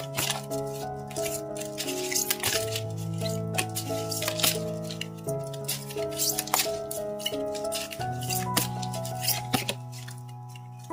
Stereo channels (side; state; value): both; identical; correlation 1.00